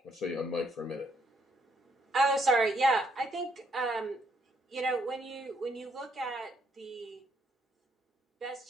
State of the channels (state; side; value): normal; both; correlation 0.72